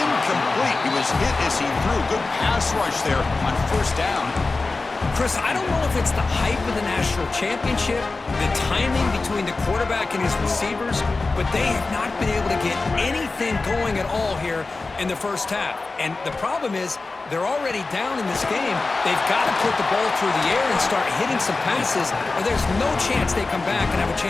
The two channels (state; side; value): quieter; right; 3.6 dB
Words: He was hit as he threw. Good pass rush there on 1st down. Chris, I don't know if it's the hype of the national championship, the timing between the quarterback and his receivers, but they have not been able to get anything going at all here in the 1st half. And the problem is they're already down in this game. They've got to put the ball through the air and start hitting some passes, or there's no chance they come back and have a